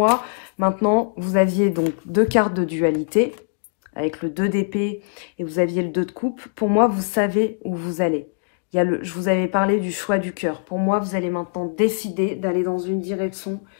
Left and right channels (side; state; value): right; silent; digital silence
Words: maintenant, vous aviez donc 2 cartes de dualité, avec le 2 d'épée et vous aviez le 2 de coupe. Pour moi, vous savez où vous allez. Je vous avais parlé du choix du cœur. Pour moi, vous allez maintenant décider d'aller dans une direction